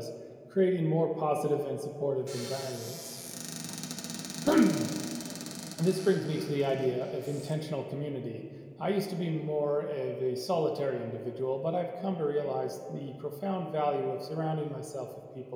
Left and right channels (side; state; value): both; identical; correlation 1.00